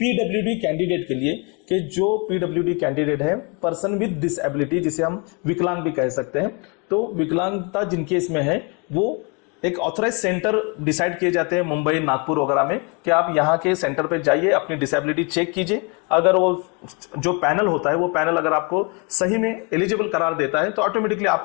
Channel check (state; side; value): quieter; right; 32.7 dB